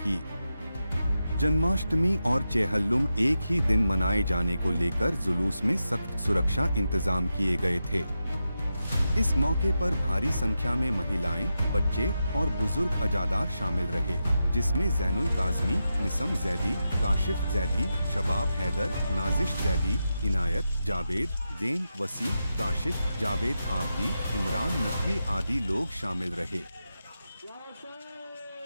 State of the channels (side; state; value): both; inverted; correlation -0.89